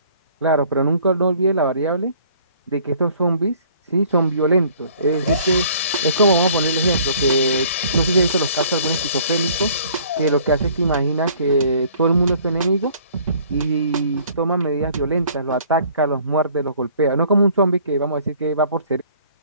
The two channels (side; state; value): both; inverted; correlation -0.56